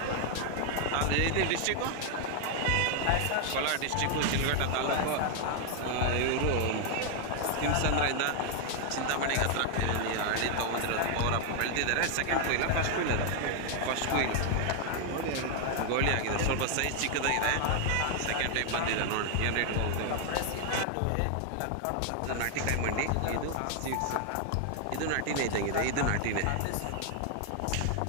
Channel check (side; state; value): both; different; correlation 0.00